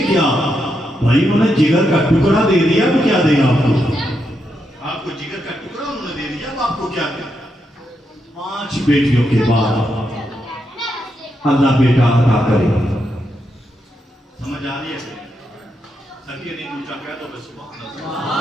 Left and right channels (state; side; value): normal; both; correlation 0.83